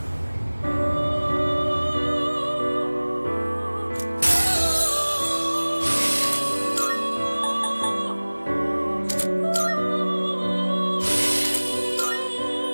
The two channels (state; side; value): inverted; both; correlation -1.00